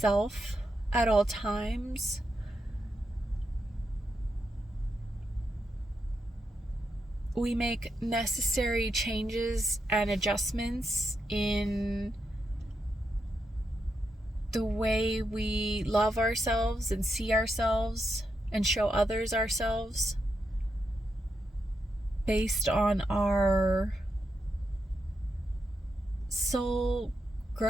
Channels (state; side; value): normal; both; correlation 0.84